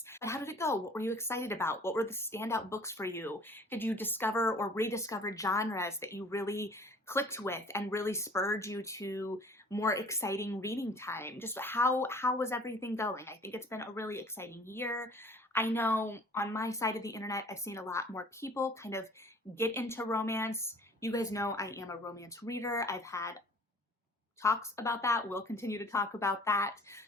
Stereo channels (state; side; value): normal; both; correlation 0.50